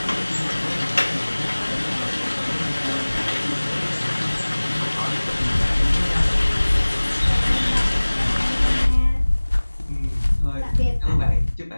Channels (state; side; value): inverted; both; correlation -1.00